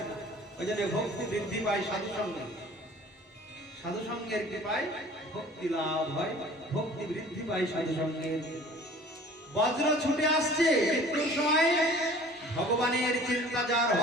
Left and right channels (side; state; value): both; normal; correlation 0.48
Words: ওই জন্য ভক্তি বৃদ্ধি পায় সাধু সঙ্গে, সাধু সঙ্গের কৃপায় ভক্তি লাভ হয়, ভক্তি বৃদ্ধি পায় সাধু সঙ্গের। বজ্র ছুটে আসছে মৃত্যুর সময়, ভগবানের চিন্তা যার